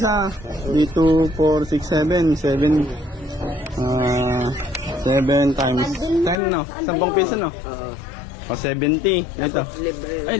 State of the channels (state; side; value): drops out; right; at 6.4 s